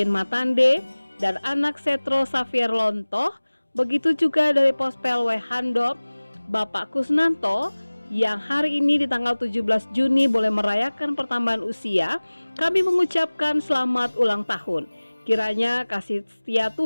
Matande dan anak Setro Xavier Lontoh, begitu juga dari Pospel Wehandop, Bapak Kusnanto, yang hari ini di tanggal 17 Juni boleh merayakan pertambahan usia. Kami mengucapkan selamat ulang tahun. Kiranya kasih setia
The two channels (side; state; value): both; inverted; correlation -1.00